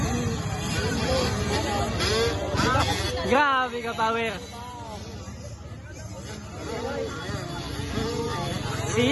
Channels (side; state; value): both; identical; correlation 1.00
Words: Grabe ka power.